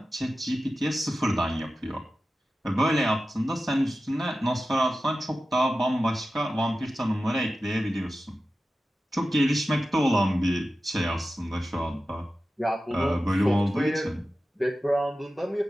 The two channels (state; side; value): normal; both; correlation 0.93